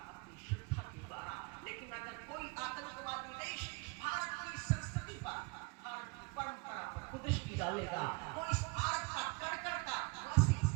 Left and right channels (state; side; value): quieter; left; 28.8 dB